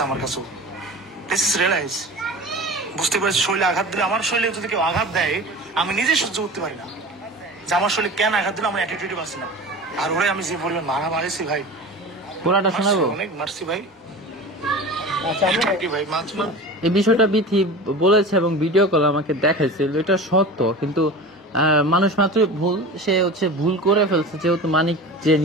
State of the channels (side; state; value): both; normal; correlation 0.34